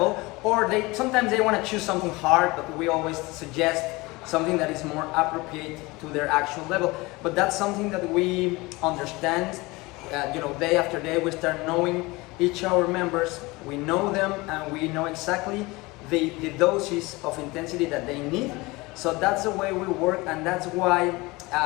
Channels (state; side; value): quieter; right; 22.9 dB